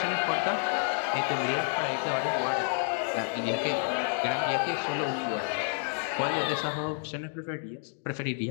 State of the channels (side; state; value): right; silent; 58 dB below the other